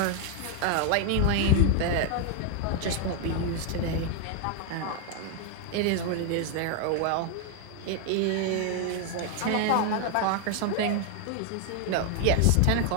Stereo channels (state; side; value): different; both; correlation 0.00